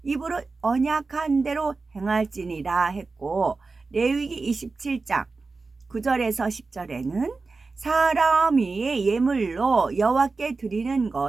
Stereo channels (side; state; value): left; quieter; 4.0 dB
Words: 입으로 언약한 대로 행할지니라 했고, 레위기 27장 9절에서 10절에는 사람이 예물로 여호와께 드리는